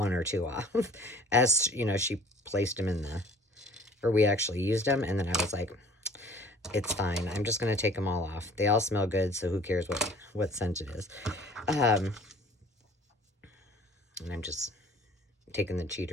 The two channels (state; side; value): normal; both; correlation 0.50